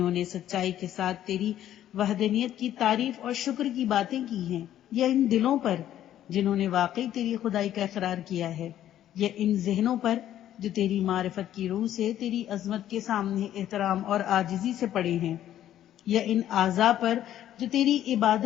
نے سچائی کے ساتھ تیری وحدانیت کی تعریف اور شکر کی باتیں کی ہیں، یا ان دلوں پر جنہوں نے واقعی تیری خدائی کا اقرار کیا ہے، یا ان ذہنوں پر جو تیری معرفت کی روح سے تیری عظمت کے سامنے احترام اور عاجزی سے پڑے ہیں، یا ان اعضاء پر جو تیری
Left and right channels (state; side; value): quieter; right; 11.9 dB